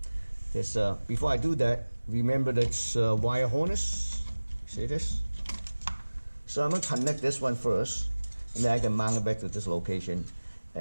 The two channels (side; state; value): both; inverted; correlation -1.00